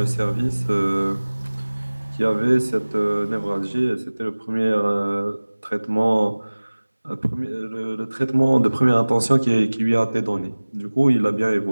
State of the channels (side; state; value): both; inverted; correlation -1.00